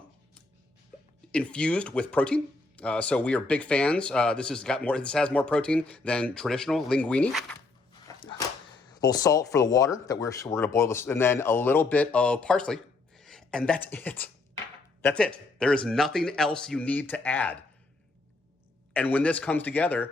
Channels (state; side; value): quieter; right; 3.4 dB